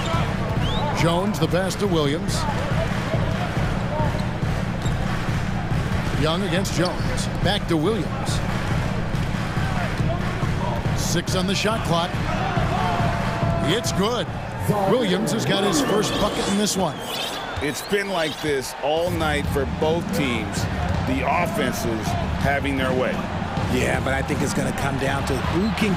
Jones, the pass to Williams. Young against Jones. Back to Williams. 6 on the shot clock. It's good. Williams has got his first bucket in this one. It's been like this all night for both teams. The offenses having their way. Yeah, but I think it's going to come down to who can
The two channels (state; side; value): identical; both; correlation 1.00